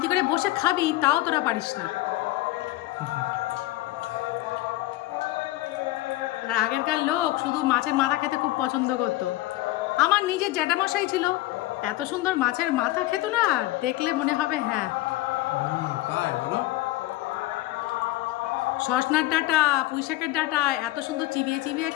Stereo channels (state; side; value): quieter; right; 17.2 dB